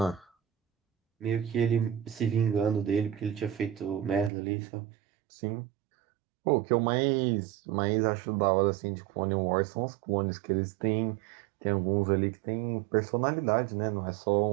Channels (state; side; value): drops out; left; at 4.3 s